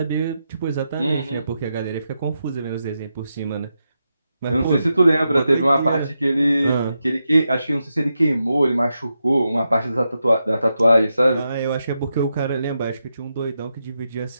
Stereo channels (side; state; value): both; inverted; correlation -0.87